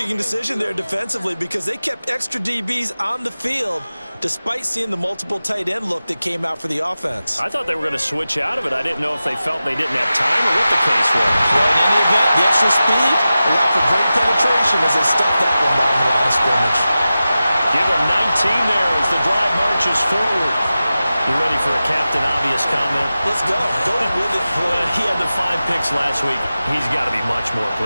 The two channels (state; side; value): inverted; both; correlation -0.94